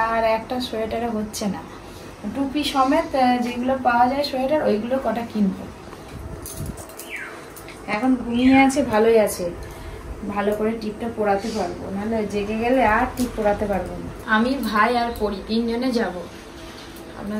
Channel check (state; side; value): identical; both; correlation 1.00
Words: আর একটা সোয়েটারে হচ্ছে না, টুপি সমেত যেগুলো পাওয়া যায় সোয়েটার, ওইগুলো কটা কিনবো। এখন ঘুমিয়ে আছে, ভালোই আছে, ভালো করে টিপটা পরাতে পারবো, নাহলে জেগে গেলে আর টিপ পরাতে পারবো না। আমি, ভাই আর পরি 3 জনে যাব।